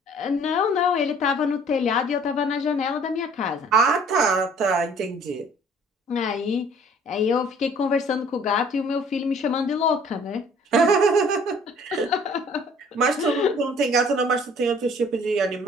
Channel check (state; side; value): normal; both; correlation 0.55